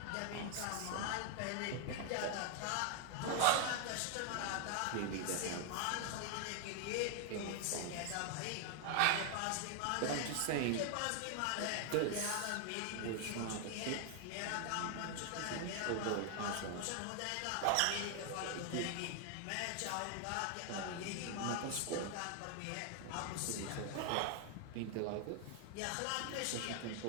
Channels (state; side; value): different; both; correlation 0.00